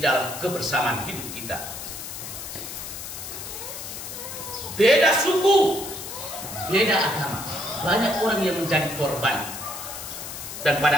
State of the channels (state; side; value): noise; left; hiss, 9 dB below the sound